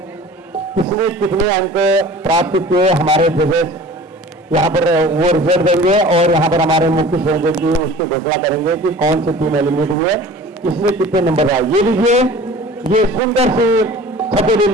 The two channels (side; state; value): both; normal; correlation 0.43